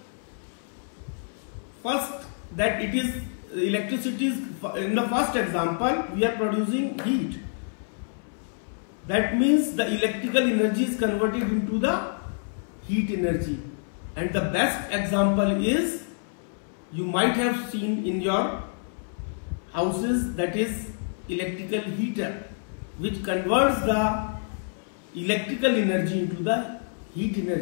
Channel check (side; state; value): right; silent; 60 dB below the other